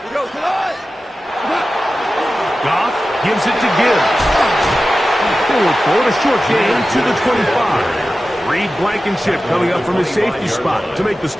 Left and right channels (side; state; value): both; normal; correlation 0.94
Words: Goff gives it to Gibbs. They look for a short gain to the 25. Reed Blankenship coming up from his safety spot to make the